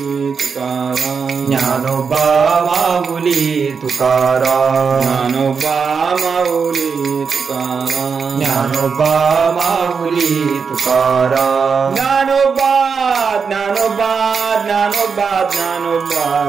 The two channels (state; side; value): quieter; left; 5.8 dB